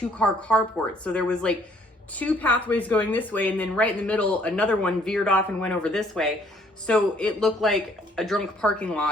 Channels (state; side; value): normal; both; correlation 0.63